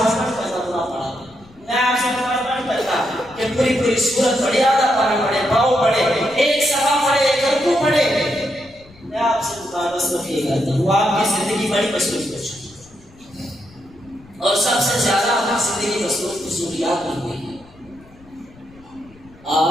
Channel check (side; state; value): left; noise; rumble, 25 dB below the sound